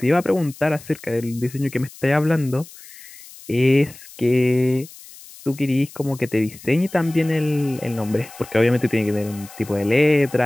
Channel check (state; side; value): noise; left; hiss, 19 dB below the sound